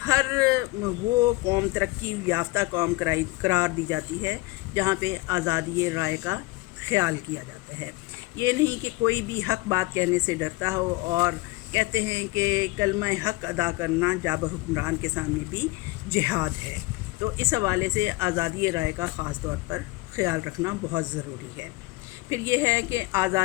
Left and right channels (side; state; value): right; quieter; 22.2 dB